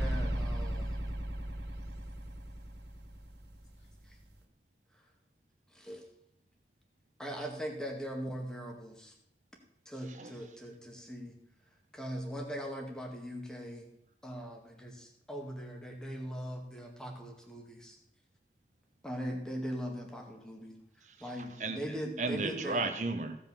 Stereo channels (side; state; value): both; normal; correlation 0.70